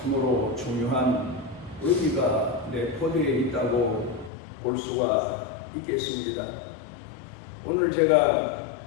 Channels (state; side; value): drops out; right; at 4.3 s